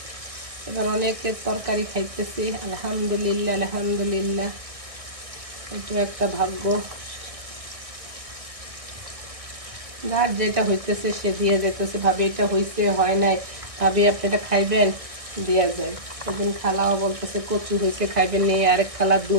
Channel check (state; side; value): late; left; 1.6 ms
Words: এবার অনেকের তরকারি খাইতেছি, আলহামদুলিল্লাহ আলহামদুলিল্লাহ। এটা একটা ভাগ্য, যার যেটা হইতেছে সে দিয়ে যেতেছে। ভাবি এটা হয়েছে হয় নাই, ভাবি আপনি এটা খাইবেন, দেওয়া যায়। একদিন খালাও বলতেছে কচু হয়েছে খাইবেন, নিয়ে আরেক খালা